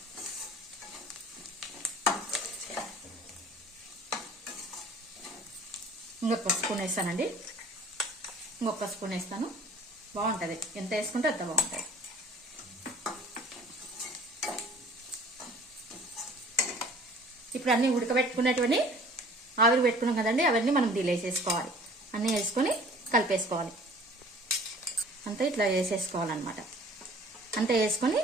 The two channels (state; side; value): normal; both; correlation 0.49